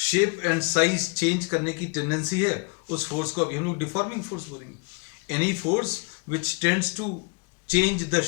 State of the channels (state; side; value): quieter; right; 33.0 dB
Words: शेप एंड साइज चेंज करने की टेंडेंसी है, उस फोर्स को अभी हम लोग डिफॉर्मिंग फोर्स बोलेंगे. Any force which tends to change the